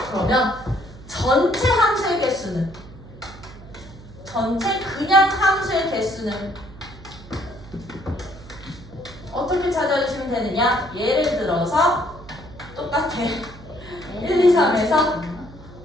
전체 함수의 개수는 전체 그냥 함수의 개수는 어떻게 찾아주시면 되느냐? 예를 들어서 똑같아 1, 2, 3에서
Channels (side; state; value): right; noise; hum, 18 dB below the sound